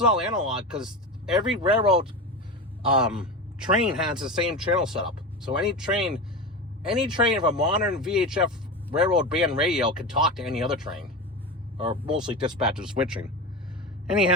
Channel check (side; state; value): both; normal; correlation 0.24